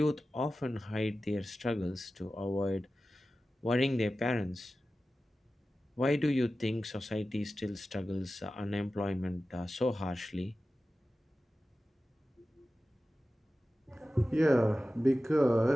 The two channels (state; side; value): normal; both; correlation 0.95